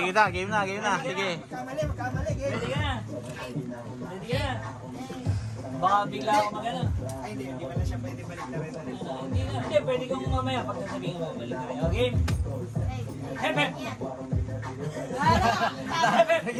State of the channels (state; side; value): identical; both; correlation 1.00